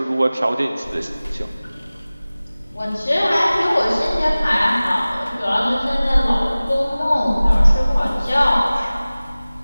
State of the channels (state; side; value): inverted; both; correlation -0.98